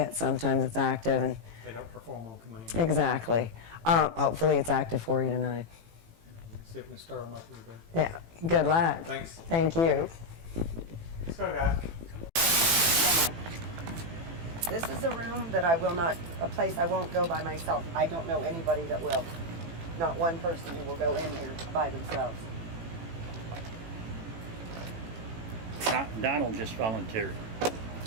sometimes it's active, and They don't perform on command. exactly. Hopefully it's active for you tonight. Let's see if we can stir them up a little bit. Yeah. Good luck. Thanks. Thank you. Let's go, guys. This is a room that a place I won't go by myself. I don't know anybody that will. Not one person who will go in here by themselves. Donald just volunteered.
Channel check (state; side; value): late; left; 18 ms